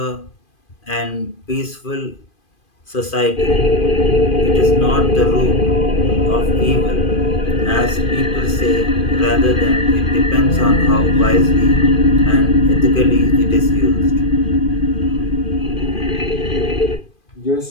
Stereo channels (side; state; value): right; late; 2.5 ms